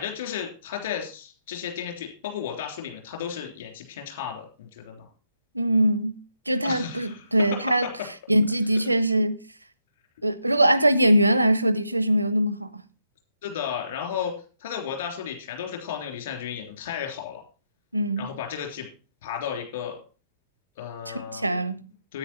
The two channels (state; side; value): inverted; both; correlation -0.81